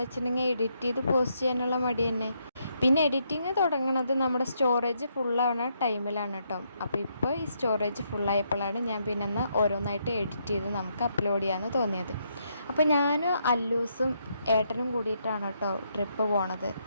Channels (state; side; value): inverted; both; correlation -0.76